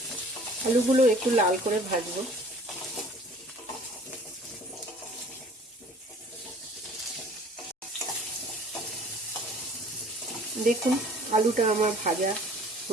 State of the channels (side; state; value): both; normal; correlation 0.50